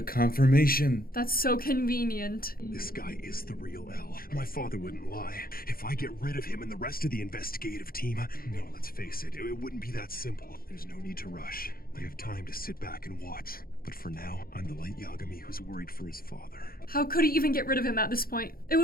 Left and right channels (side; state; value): right; late; 0.43 ms